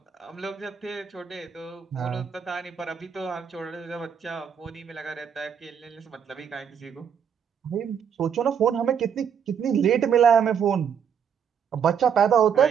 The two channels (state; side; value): quieter; left; 7.7 dB